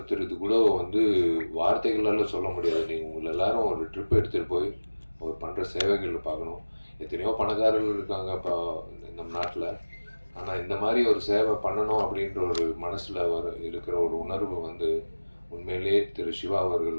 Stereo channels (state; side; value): inverted; both; correlation -1.00